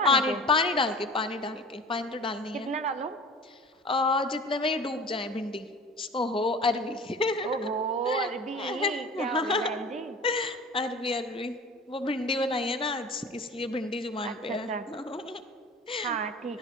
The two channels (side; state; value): both; normal; correlation 0.40